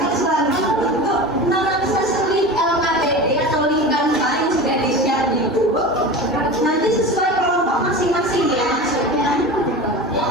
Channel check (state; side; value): normal; both; correlation 0.31